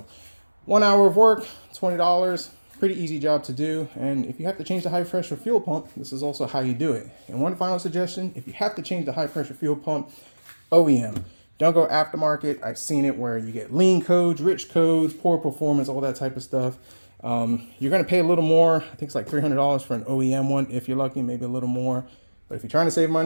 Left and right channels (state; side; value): inverted; both; correlation -1.00